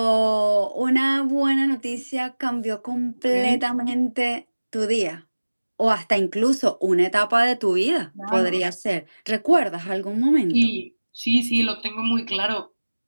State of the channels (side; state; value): both; inverted; correlation -1.00